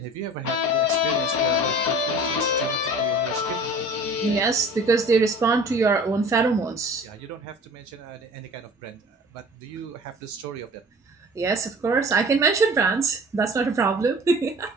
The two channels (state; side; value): normal; both; correlation 0.44